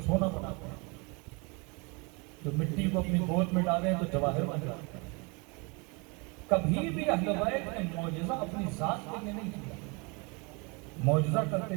سونا بناتے ہیں، جو مٹی کو اپنی گود میں ڈالیں تو جواہر بن جاتے ہیں۔ کبھی بھی اہل بیت نے معجزہ اپنی ذات کے لیے نہیں کیا، معجزہ کرتے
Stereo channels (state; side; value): quieter; left; 30.1 dB